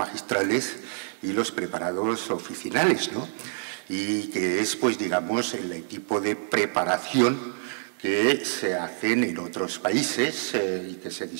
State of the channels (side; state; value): left; silent; 60 dB below the other